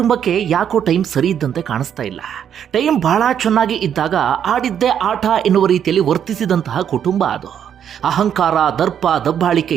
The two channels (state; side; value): quieter; left; 8.9 dB